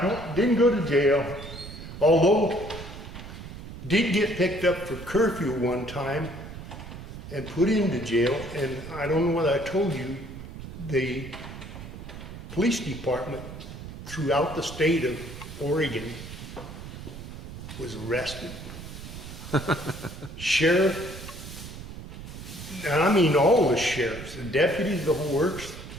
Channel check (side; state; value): right; noise; rumble, 12 dB below the sound